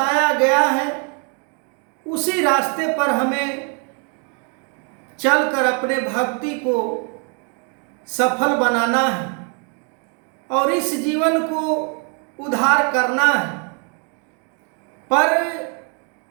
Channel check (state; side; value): quieter; left; 37.2 dB